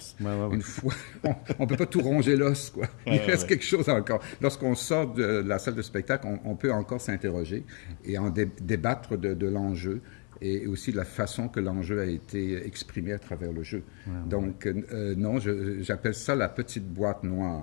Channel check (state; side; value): quieter; right; 36.7 dB